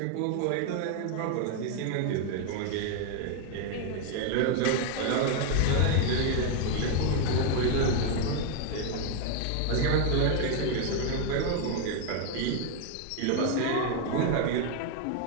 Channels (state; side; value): different; both; correlation 0.01